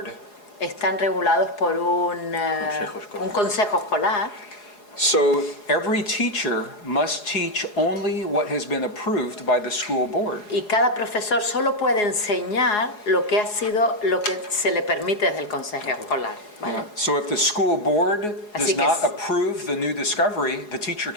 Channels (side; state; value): right; late; 4.8 ms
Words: están regulados por un consejo escolar. So every teacher must teach only what has been approved by the school board. Y cada profesor solo puede enseñar lo que se le permite desde el consejo escolar, ¿vale? So if the school board does Así que not es- approve the new discovery, the teacher